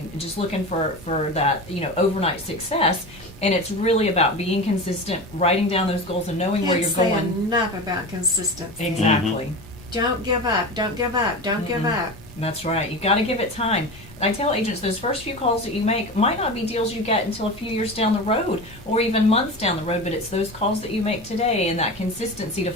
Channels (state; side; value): normal; both; correlation 0.28